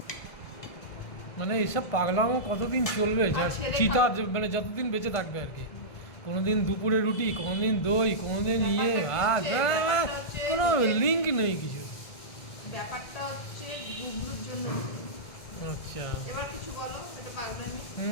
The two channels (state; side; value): late; right; 1.7 ms